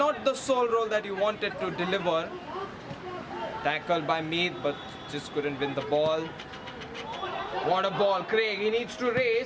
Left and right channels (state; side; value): identical; both; correlation 1.00